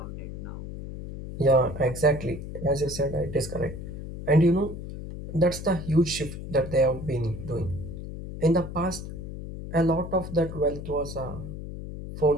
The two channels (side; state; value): left; noise; hum, 9 dB below the sound